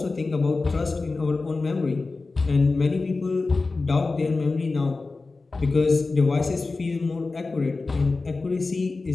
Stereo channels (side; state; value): right; quieter; 3.7 dB